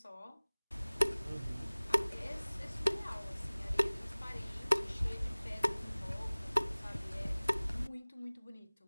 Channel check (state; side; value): inverted; both; correlation -1.00